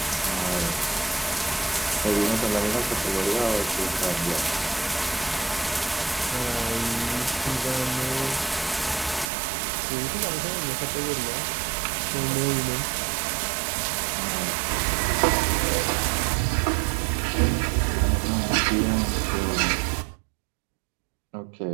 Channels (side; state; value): left; drops out; at 9.2 s